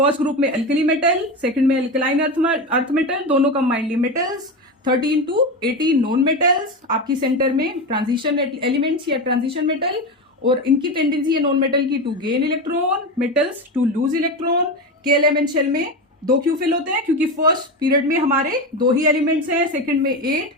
ग्रुप में अल्कली मेटल, सेकंड में अल्कलाइन अर्थ मेटल, दोनों combinedly metals, 13 to 18 non metals, आपकी सेंटर में ट्रांजिशन एलिमेंट्स या ट्रांजिशन मेटल, और इनकी टेंडेंसी है नॉन मेटल की to gain electron, metals to lose electron. के एलिमेंट शेल में 2 क्यों फिल होते हैं? क्योंकि फर्स्ट पीरियड में हमारे 2 ही एलिमेंट्स हैं, सेकंड में 8,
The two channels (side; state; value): both; normal; correlation 0.19